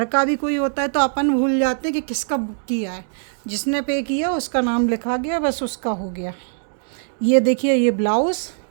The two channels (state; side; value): silent; left; digital silence